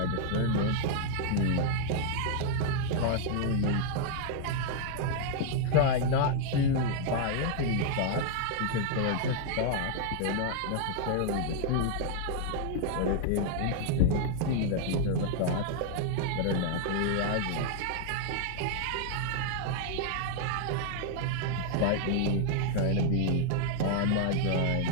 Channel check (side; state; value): both; different; correlation 0.00